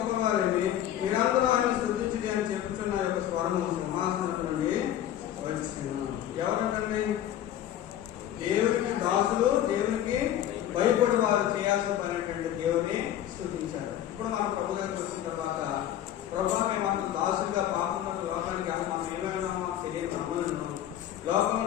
మీరందరూ ఆయన స్తుతించండి అని చెప్పుతున్న యొక్క స్వరము సింహాసనం నుండి వచ్చినాను. ఎవరంటండి? దేవుడికి దాసులు, దేవునికి భయపడి వారు చేయాల్సిన పని ఏంటంటే దేవుడిని స్తుతించారు. ఇప్పుడు మనం ప్రభు దగ్గరికి వచ్చిన తర్వాత ప్రభు మేము దాసులుగా పాపంలో లోకానికి మనం ఏమైనా తెలియక అమ్మలను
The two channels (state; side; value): quieter; right; 11.5 dB